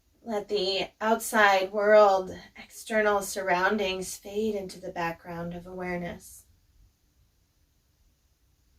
Let the outside world, external surroundings fade into the background of awareness.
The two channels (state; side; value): identical; both; correlation 1.00